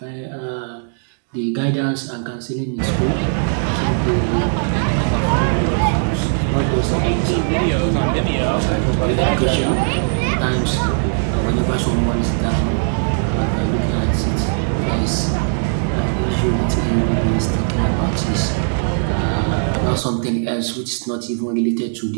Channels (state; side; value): silent; left; digital silence